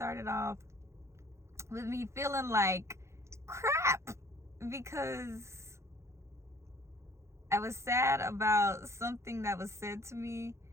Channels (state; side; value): late; left; 0.13 ms